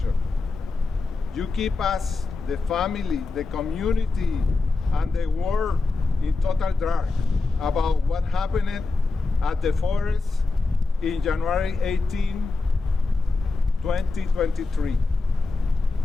You keep us, the family, the community, and the world in total dark about what happened at the forest in January 18, 2023.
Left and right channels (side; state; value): right; quieter; 3.7 dB